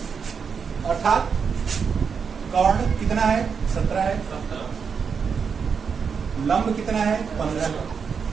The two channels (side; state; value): left; quieter; 6.2 dB